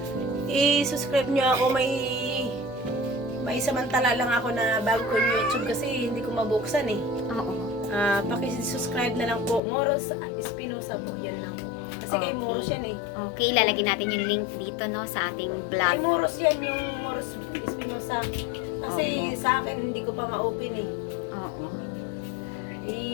i-subscribe nyo ako. May samantala lang ako na bago ko yung YouTube kasi hindi ko mabuksan eh. Oo. Paki-subscribe na lang po. Moros Espinosa po, yan lang po. Kasi kay Moros yan eh. Okay, lalagyan natin yung link dito no sa ating vlog. Kay Moros yan, yung Moros Espinosa. Kasi sa akin, hindi ko pa ma-open eh. Oo.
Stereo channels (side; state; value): right; drops out; at 9.6 s